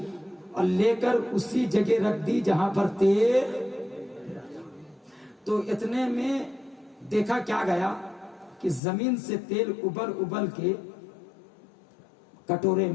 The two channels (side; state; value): right; drops out; at 8.8 s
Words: اور لے کر اسی جگہ رکھ دی جہاں پر تیل. تو اتنے میں دیکھا کیا گیا کہ زمین سے تیل ابل ابل کے کٹورے